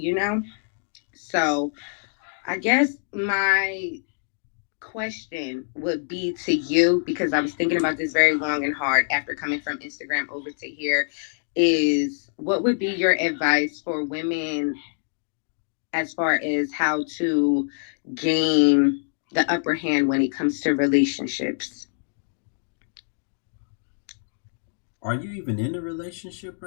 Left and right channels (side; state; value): right; silent; digital silence